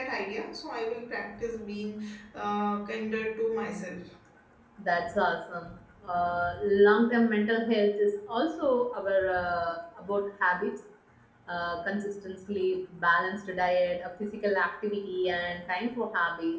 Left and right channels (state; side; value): identical; both; correlation 1.00